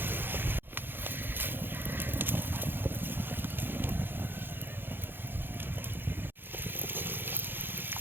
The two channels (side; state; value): left; late; 0.10 ms